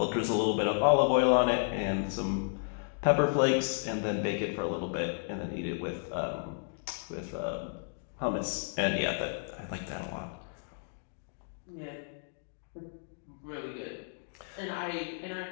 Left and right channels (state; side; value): silent; right; digital silence